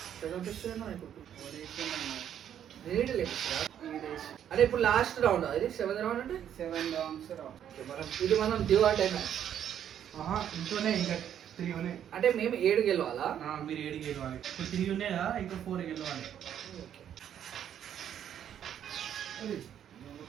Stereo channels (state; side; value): quieter; left; 9.8 dB